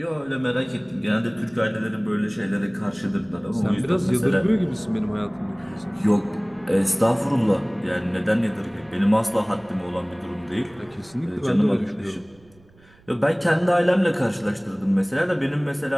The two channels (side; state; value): right; noise; rumble, 28 dB below the sound